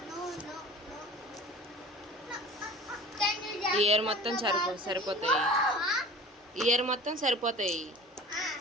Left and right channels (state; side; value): normal; both; correlation 0.40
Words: ఇయర్ మొత్తం సరిపోతాయి. ఇయర్ మొత్తం సరిపోతాయి